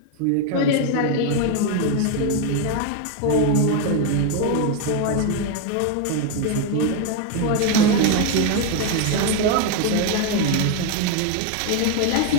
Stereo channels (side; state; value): both; different; correlation 0.01